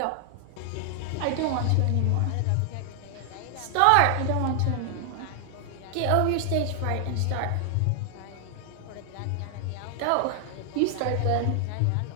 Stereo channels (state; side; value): different; both; correlation 0.00